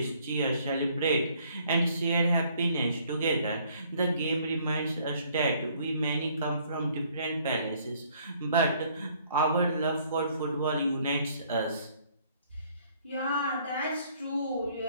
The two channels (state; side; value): inverted; both; correlation -0.62